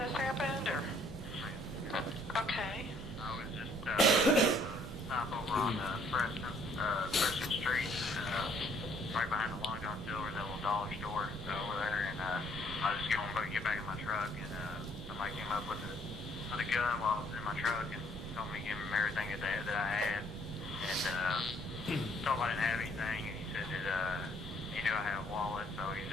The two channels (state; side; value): normal; both; correlation 0.63